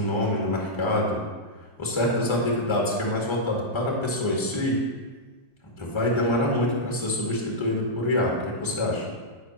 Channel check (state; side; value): late; right; 1.3 ms